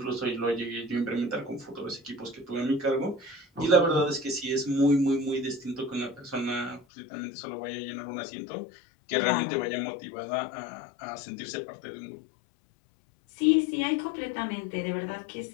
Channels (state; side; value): drops out; right; at 6.9 s